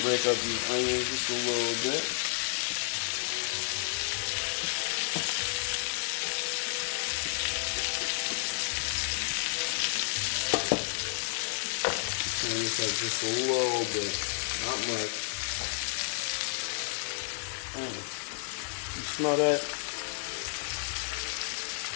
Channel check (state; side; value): silent; right; 57 dB below the other